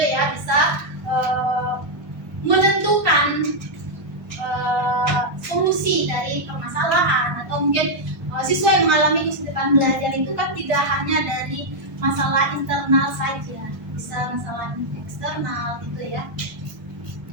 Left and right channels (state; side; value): late; left; 1.2 ms